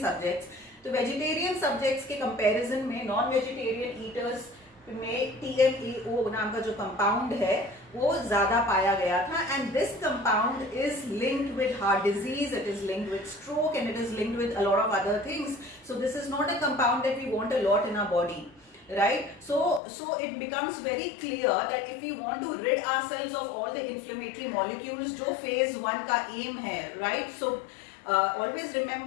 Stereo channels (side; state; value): right; drops out; at 19.8 s